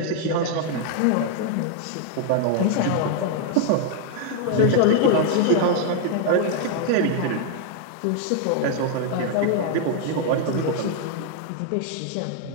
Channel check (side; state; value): both; different; correlation 0.00